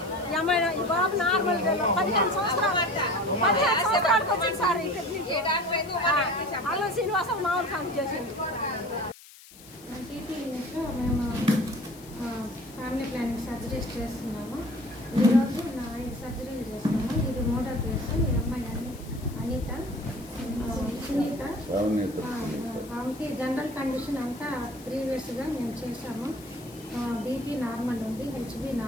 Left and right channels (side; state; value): left; noise; hiss, 20 dB below the sound